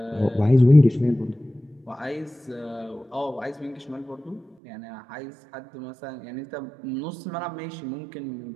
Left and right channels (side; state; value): left; drops out; at 4.5 s